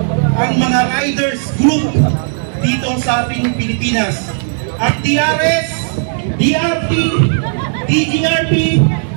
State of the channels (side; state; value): left; silent; digital silence